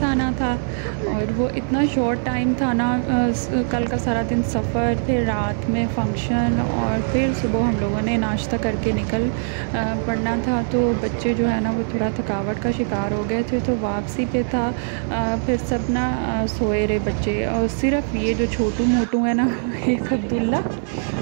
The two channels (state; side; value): silent; left; digital silence